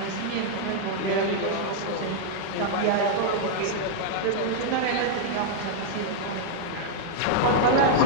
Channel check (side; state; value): both; different; correlation -0.01